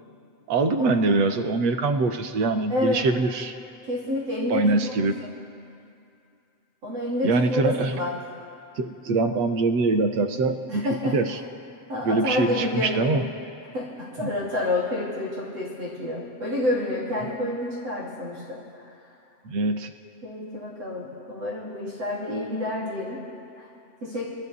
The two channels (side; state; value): left; late; 7.8 ms